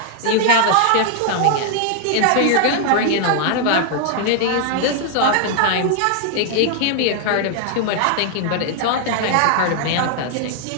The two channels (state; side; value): different; both; correlation 0.00